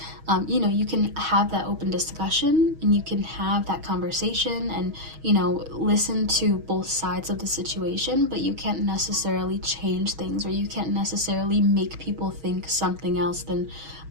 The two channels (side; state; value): left; late; 6.3 ms